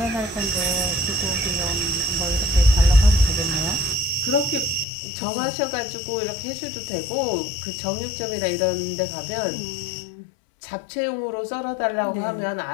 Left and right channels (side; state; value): right; drops out; at 4.9 s